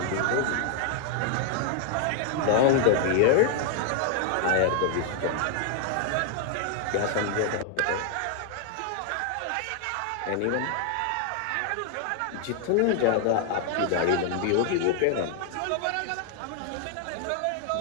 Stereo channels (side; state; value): both; different; correlation 0.00